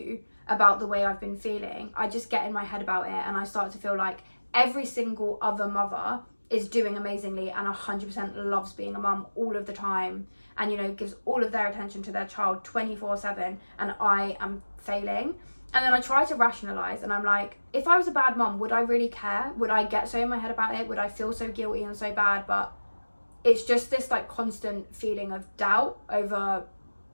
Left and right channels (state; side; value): inverted; both; correlation -1.00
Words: about the way I've been feeling, I just get in my head about it, and I start to feel like every single other mother is doing amazingly and 100% loves being a mum all of the time, and, you know, gives all of their attention to their child 24/7, and I am failing. And then I try to rationalize, and I'm like, if I was a bad mum, would I really care? Would I get so in my head about it? Would I feel so guilty and so bad? But it's just this like constant feeling of doubt over